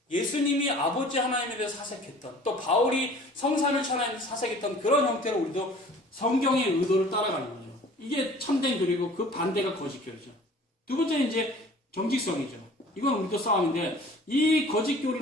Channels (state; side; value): normal; both; correlation 0.48